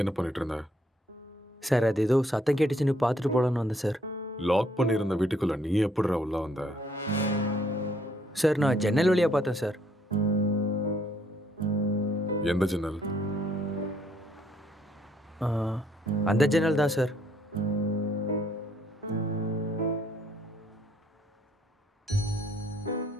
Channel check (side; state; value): both; normal; correlation 0.67